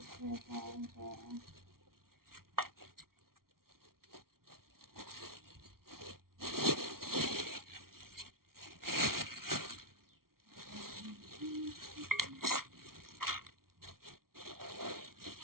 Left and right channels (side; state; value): left; late; 0.93 ms